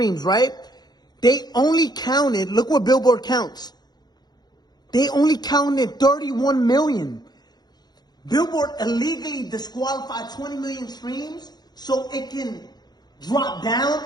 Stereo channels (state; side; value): late; right; 0.20 ms